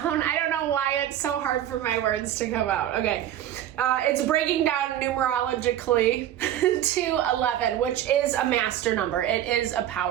I don't know why it's so hard for my words to come out. Okay. It's breaking down numerologically to 11, which is a master number. It is a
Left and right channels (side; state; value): left; quieter; 11.7 dB